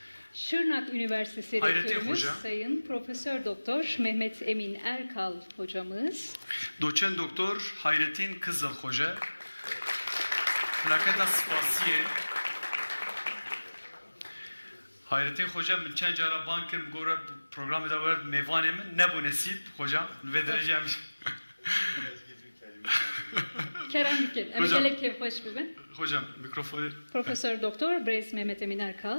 Şırnak Üniversitesi Hayrettin Rektörümüz Hoca. Sayın Profesör Doktor Mehmet Emin Erkal hocamız. Doçent Doktor Hayrettin Kızıl Hoca. Plaketa spasiye. Hayrettin Hoca min çend cara bankim gore programı da var mevanê min ne bu nesip hocam ve dereceğim. Kerem Büken. Hocam. Evet, kevhoş bibin. Hocam mikrofonu. Profesör Doktor Brez Mehmet Emin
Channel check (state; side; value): inverted; both; correlation -1.00